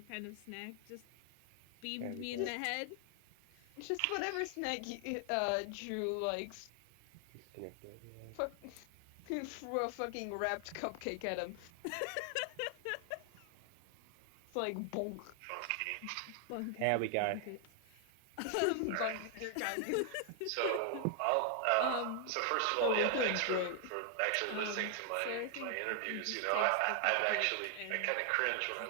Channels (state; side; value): different; both; correlation 0.00